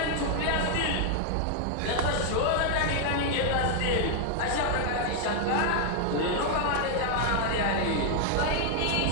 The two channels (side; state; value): both; different; correlation 0.00